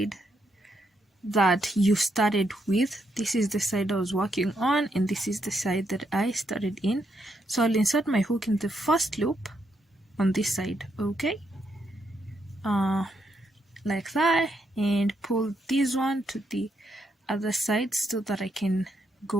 that you started with, this is the side I was working on, and this is the side that I started in. So I'll insert my hook in the first loop on this side, okay? Like that, and pull this one to the other side so that I can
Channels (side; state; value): both; normal; correlation 0.79